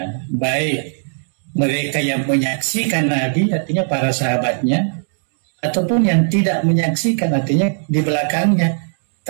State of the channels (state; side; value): silent; left; digital silence